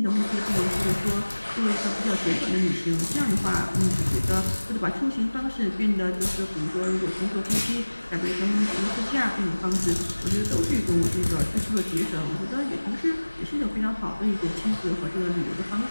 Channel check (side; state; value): both; inverted; correlation -1.00